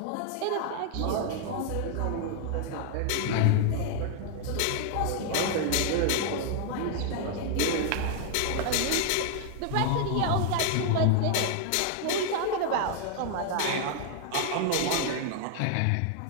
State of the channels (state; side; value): different; both; correlation 0.00